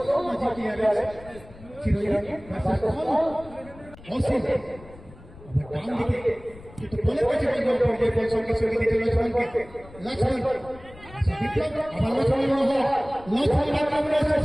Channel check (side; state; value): left; noise; rumble, 20 dB below the sound